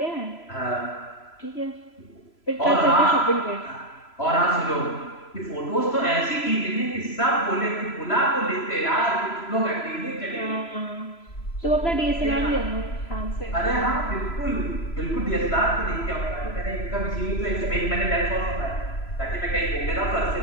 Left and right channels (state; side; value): late; right; 3.0 ms